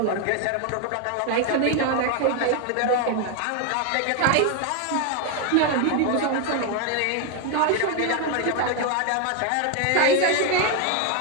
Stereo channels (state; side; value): different; both; correlation 0.01